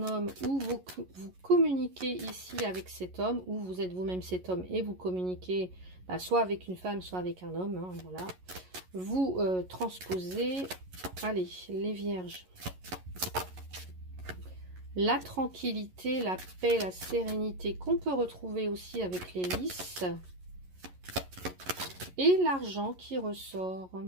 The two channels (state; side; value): late; left; 11 ms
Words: homme où vous communiquez ici avec cet homme, ou vous êtes vous-même cet homme et vous communiquez soit avec une femme, soit avec un homme. Hein, voilà. vous transposez, allez, les vierges, la tranquillité, la paix, la sérénité qu'on peut retrouver aussi avec les lys. Et l'argent qui ressort.